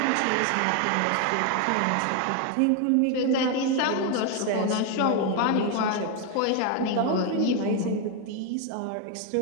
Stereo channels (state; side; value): different; both; correlation 0.01